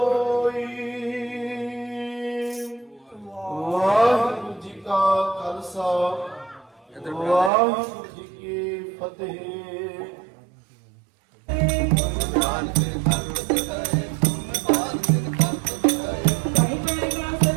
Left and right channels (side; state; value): left; drops out; at 7.5 s